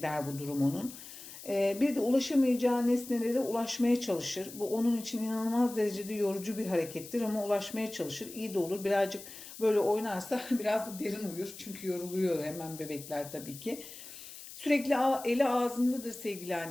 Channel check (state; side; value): noise; left; hiss, 14 dB below the sound